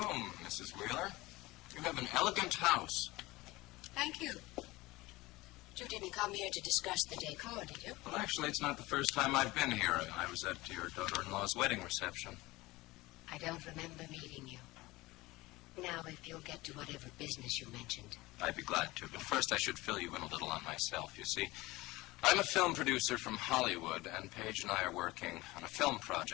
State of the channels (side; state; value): right; quieter; 20.2 dB